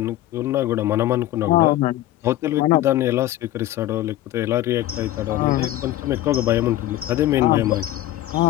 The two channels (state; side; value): quieter; right; 14.4 dB